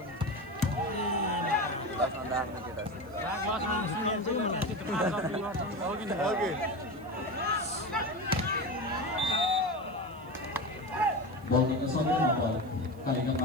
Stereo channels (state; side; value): noise; right; hiss, 28 dB below the sound